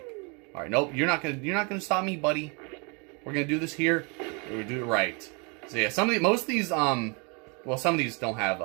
Alright, nope, you're not gonna stop me, buddy. We're gonna do this here. We're gonna do it right. So yeah, most of these, well, some of these don't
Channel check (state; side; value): quieter; left; 32.5 dB